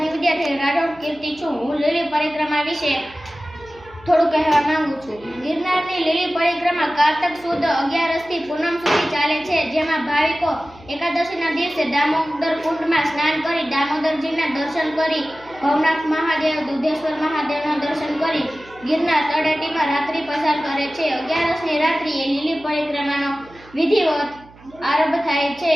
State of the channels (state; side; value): noise; right; hum, 24 dB below the sound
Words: ની વિદ્યાર્થી રાઠોડ કીર્તિ છું। હું લીલી પરિક્રમા વિશે થોડું કહેવા માંગુ છું। ગિરનારની લીલી પરિક્રમા કારતક સુદ 11 થી પૂનમ સુધી ચાલે છે, જેમાં ભાવિકો એકાદશીના દિવસે દામોદર કુંડમાં સ્નાન કરી દામોદરજીના દર્શન કરી ભવનાથ મહાદેવ, દુધેશ્વર મહાદેવના દર્શન કરી ગિરનાર તળેટીમાં રાત્રિ પસાર કરે છે। 11ની રાત્રિએ લીલી પરિક્રમાનો વિધિવત આરંભ થાય છે।